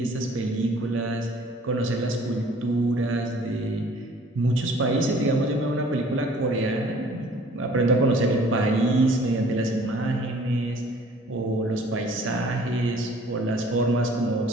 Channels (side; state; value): both; normal; correlation 0.53